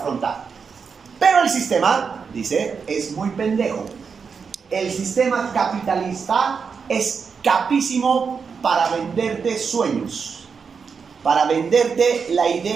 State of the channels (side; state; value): left; quieter; 5.8 dB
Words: Pero el sistema, dice, es muy pendejo. El sistema capitalista es capísimo para venderte sueños, para venderte la